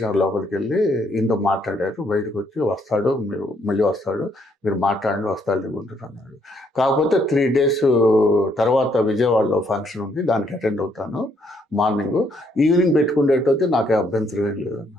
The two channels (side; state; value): both; normal; correlation 0.70